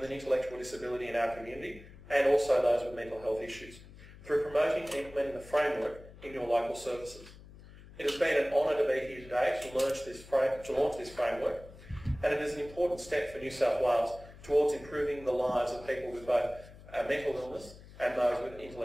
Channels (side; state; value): left; noise; hum, 19 dB below the sound